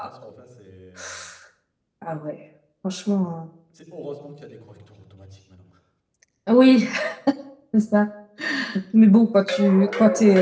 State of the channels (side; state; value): both; identical; correlation 1.00